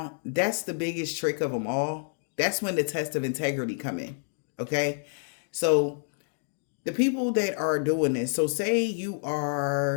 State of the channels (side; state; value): right; silent; 59 dB below the other